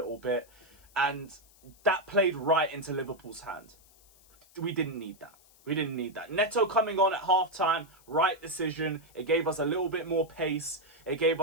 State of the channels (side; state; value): left; noise; hiss, 28 dB below the sound